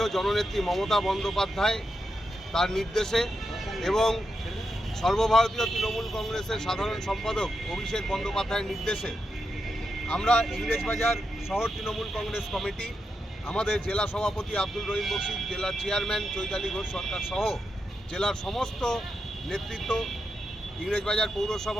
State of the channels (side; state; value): both; normal; correlation 0.86